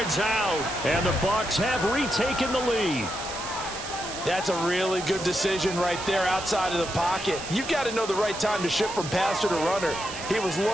out, and the Bucs have retaken the lead. That's a really good decision right there outside of the pocket. You've got to know the right time to shift from passer to runner. He was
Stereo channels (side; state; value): right; noise; hiss, 9 dB below the sound